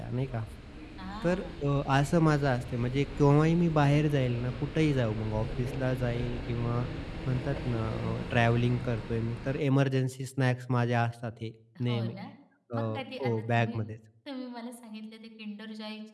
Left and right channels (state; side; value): identical; both; correlation 1.00